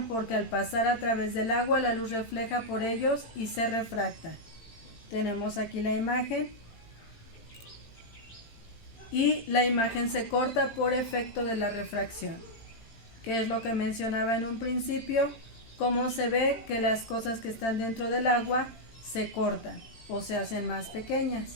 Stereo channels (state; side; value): late; right; 18 ms